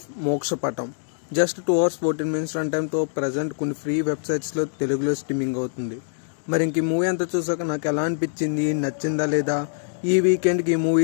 Mokshapatam. Just 2 hours 14 minutes run టైంతో present కొన్ని free వెబ్సైట్స్లో తెలుగులో స్ట్రీమింగ్ అవుతుంది. మరి ఇంక ఈ మూవీ అంతా చూసాక నాకు ఎలా అనిపించింది, నచ్చిందా లేదా, ఈ వీకెండ్కి ఈ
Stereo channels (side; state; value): right; silent; digital silence